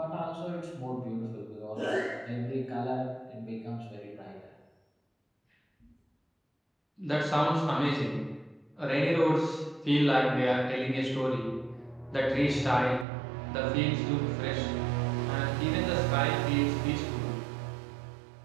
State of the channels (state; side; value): drops out; left; at 13.1 s